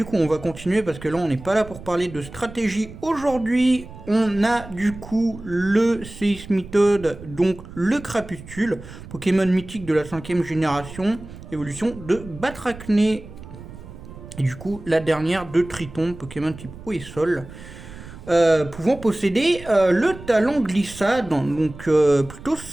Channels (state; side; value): noise; right; rumble, 15 dB below the sound